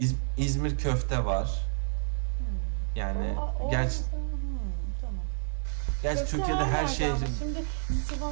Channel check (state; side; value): silent; left; 58 dB below the other